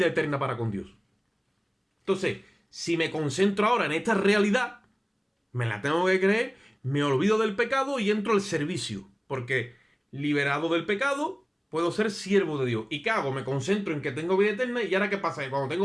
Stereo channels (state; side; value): identical; both; correlation 1.00